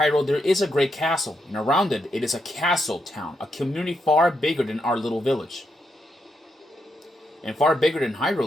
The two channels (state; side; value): normal; both; correlation 0.81